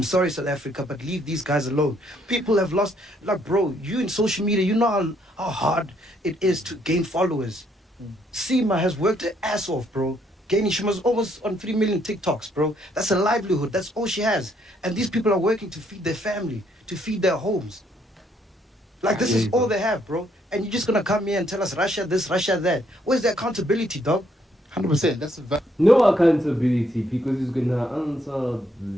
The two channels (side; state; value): both; normal; correlation 0.70